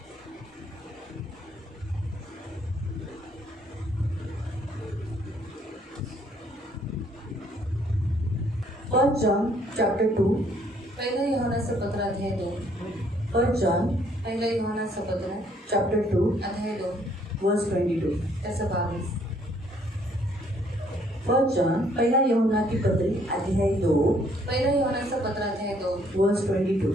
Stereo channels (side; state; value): both; normal; correlation 0.65